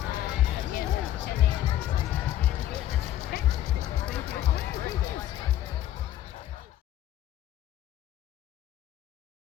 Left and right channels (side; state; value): right; quieter; 12.7 dB